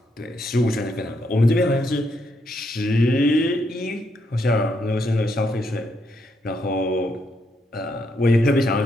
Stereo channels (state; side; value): normal; both; correlation 0.77